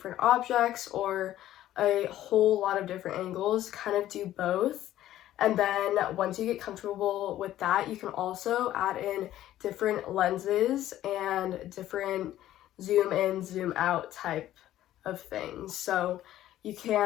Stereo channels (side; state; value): right; quieter; 13.3 dB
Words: objects or a whole lot of different angles, kind of do both. And then once you get comfortable with that, you can also add in different lenses and different zoom in, zoom out type of things. So you